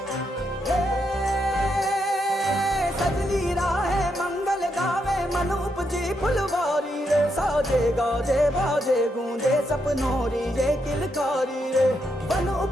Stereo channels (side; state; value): both; normal; correlation 0.80